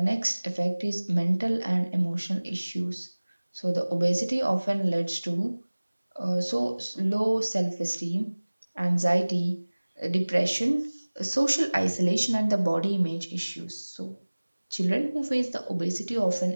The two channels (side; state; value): both; inverted; correlation -1.00